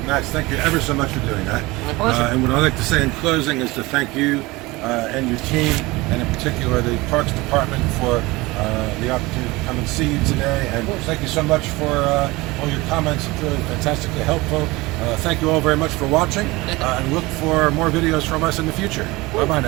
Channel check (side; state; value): left; quieter; 21.8 dB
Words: Max, thank you ever so much for doing that. My pleasure. And what I'd like to say in closing is to thank you and your team, and in particular the Parks Department, for the opportunity to come and see you today. And thank you so much for all your comments. It's really fantastically helpful. Thank you all very much for watching, and look for more videos from us in the future. Bye-bye